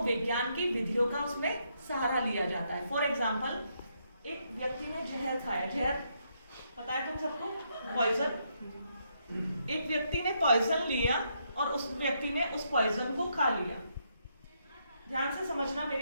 की विधियों का उसमें सहारा लिया जाता है। फॉर एग्जाम्पल, एक व्यक्ति ने जहर खाया, जहर पता है तुम सबको, पॉइजन। एक व्यक्ति ने पॉइजन लिया और उस व्यक्ति ने उस पॉइजन को खा लिया। ध्यान से समझना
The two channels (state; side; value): inverted; both; correlation -0.77